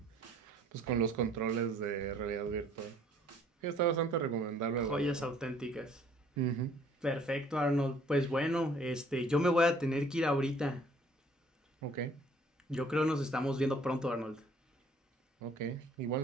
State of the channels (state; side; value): normal; both; correlation 0.58